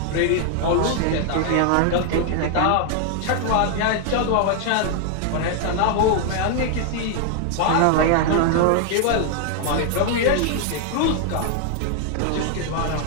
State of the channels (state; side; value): different; both; correlation 0.00